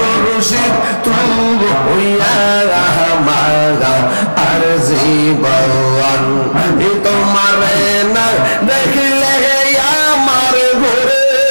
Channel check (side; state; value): both; inverted; correlation -1.00